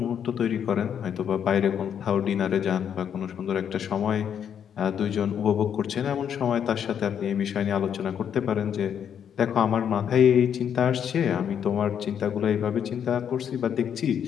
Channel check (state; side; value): quieter; right; 8.5 dB